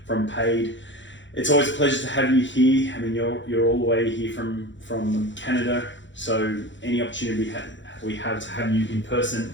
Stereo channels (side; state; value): right; late; 0.54 ms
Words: Paiid. It's always a pleasure to have you here. I mean, you're all the way here from Canada, so any opportunity we have to have you in person